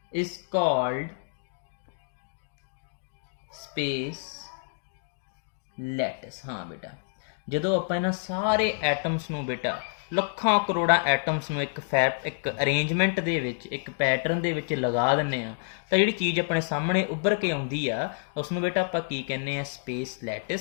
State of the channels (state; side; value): silent; right; digital silence